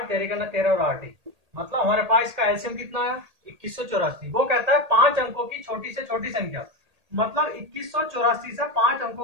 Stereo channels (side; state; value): left; late; 1.8 ms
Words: 13 का 13 और 8 ही। मतलब हमारे पास इसका एलसीएम कितना है? 2184। वो कहता है 5 अंकों की छोटी से छोटी संख्या, मतलब 2184 से 5